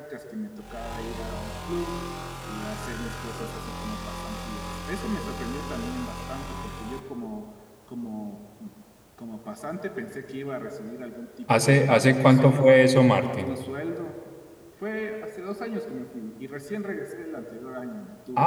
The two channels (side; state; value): both; identical; correlation 1.00